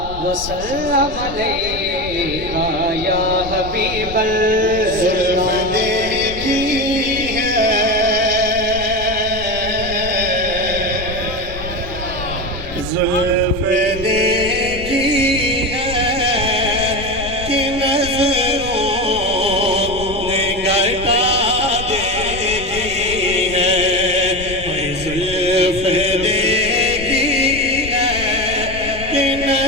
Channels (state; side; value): noise; left; rumble, 11 dB below the sound